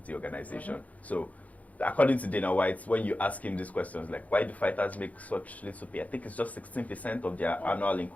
organization. So according to Dana White, when you ask him these questions, like why do fighters make such little pay? I think it's just 16% of their annual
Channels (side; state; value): right; late; 0.072 ms